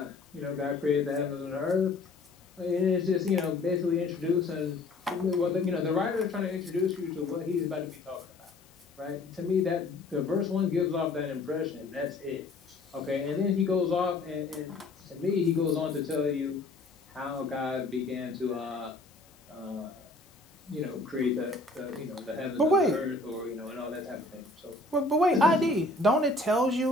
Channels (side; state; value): right; quieter; 3.2 dB